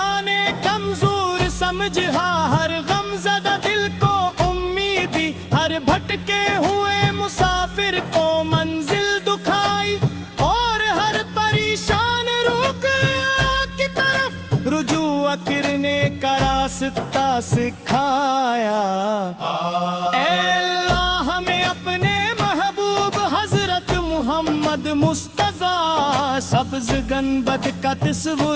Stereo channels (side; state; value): both; identical; correlation 1.00